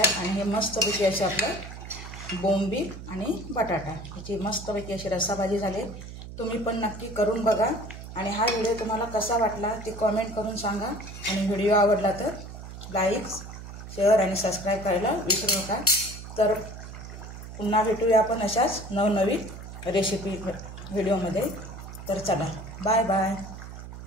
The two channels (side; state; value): right; noise; hum, 12 dB below the sound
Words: आणि हे मस्तपैकी असे आपलं बोंबील आणि बटाटा याची मस्तपैकी अशी रस्सा भाजी झाली. तुम्ही पण नक्की करून बघा. आणि हा व्हिडिओ तुम्हाला कसा वाटला ते कमेंट करून सांगा. आणि व्हिडिओ आवडला तर लाईक, शेअर आणि सबस्क्राईब करायला विसरू नका. तर पुन्हा भेटूया आपण अशाच नवनवीन रेसिपी व्हिडिओमध्ये. तर चला, बाय बाय.